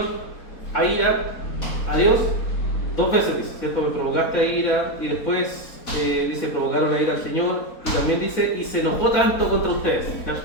a ira a Dios, 2 veces dice, ¿cierto? Me provocaste a ira, y después dice, provocaron a ira al Señor, y también dice, y se enojó tanto contra ustedes. ¿Ya?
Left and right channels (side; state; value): right; late; 4.0 ms